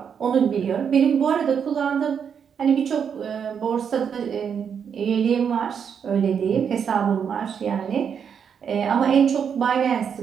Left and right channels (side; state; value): left; quieter; 7.3 dB